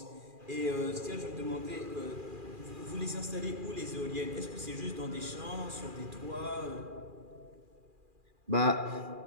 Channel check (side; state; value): left; late; 2.4 ms